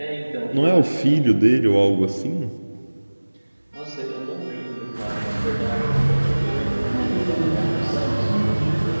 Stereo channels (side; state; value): both; inverted; correlation -1.00